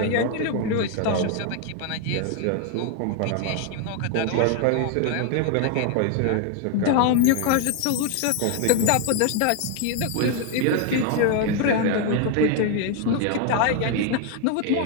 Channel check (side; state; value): both; different; correlation 0.01